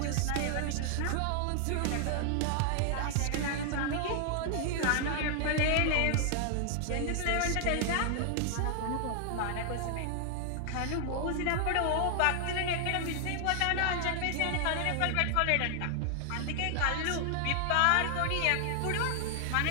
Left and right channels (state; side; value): different; both; correlation 0.00